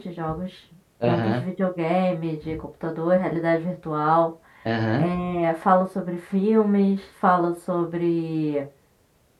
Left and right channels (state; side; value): identical; both; correlation 1.00